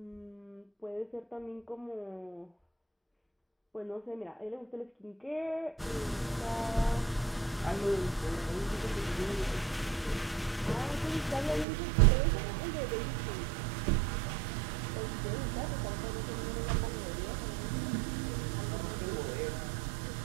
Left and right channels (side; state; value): left; drops out; at 11.7 s